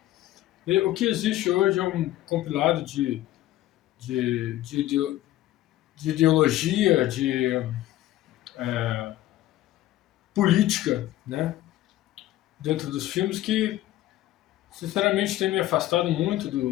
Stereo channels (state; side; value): quieter; right; 14.8 dB